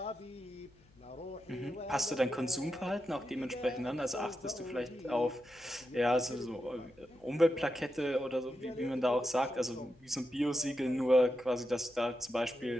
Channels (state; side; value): noise; left; hum, 28 dB below the sound